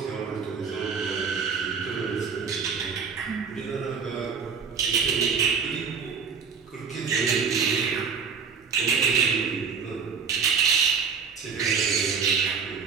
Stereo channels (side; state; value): left; quieter; 6.0 dB